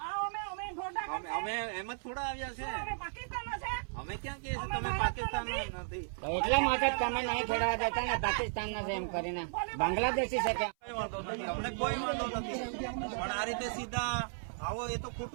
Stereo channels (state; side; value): silent; left; 54 dB below the other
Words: અમે ઢોંઢા અમે એમ જ થોડા આવ્યા છે. અમે પાકિસ્તાનના છે. અમે ક્યાં કહીએ છીએ તમે પાકિસ્તાન નથી? એટલા માટે તમે નહીં ખેડવા દેતા ને પાકિસ્તાન ના છે એમ કરીને બાંગ્લાદેશી છે કે કઈ વાંધો નથી, અમને કોઈ વાંધો નથી, પણ આ રીતે સીધા આવો એ તો